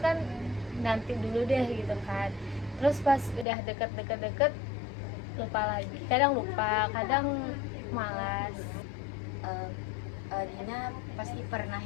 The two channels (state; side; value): drops out; right; at 3.5 s